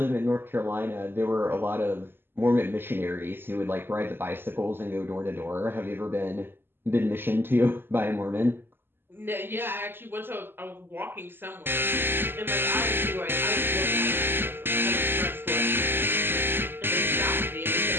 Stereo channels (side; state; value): left; late; 0.10 ms